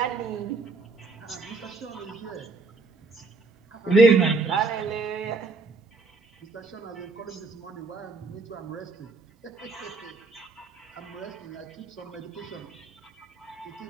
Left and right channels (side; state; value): left; quieter; 3.7 dB